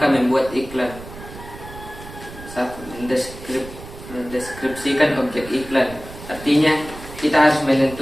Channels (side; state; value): right; noise; rumble, 14 dB below the sound